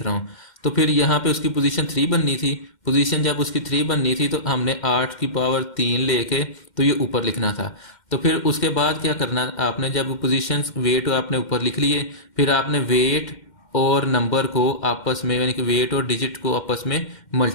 रहा हूँ, तो फिर यहाँ पे उसकी पोजीशन 3 बननी थी। पोजीशन जब उसकी 3 बननी थी तो हमने 8 की पावर 3 लेके तो ये ऊपर लिखना था। तो फिर उसके बाद क्या करना, आपने जब पोजीशन वेट आपने ऊपर लिख लिए, फिर आपने वेट और नंबर को आपस में, यानी कि वेट और डिजिट को आपस में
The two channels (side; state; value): right; late; 2.1 ms